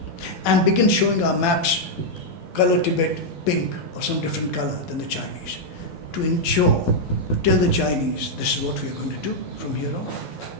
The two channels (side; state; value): right; late; 12 ms